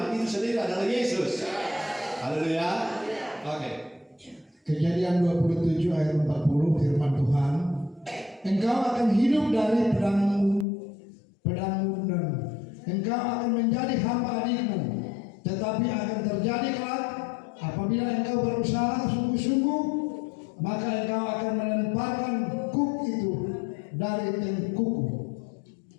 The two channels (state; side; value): drops out; right; at 10.7 s